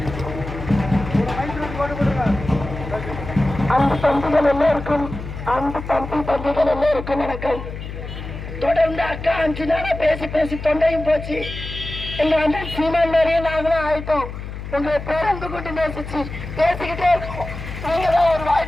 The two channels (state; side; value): noise; left; hum, 9 dB below the sound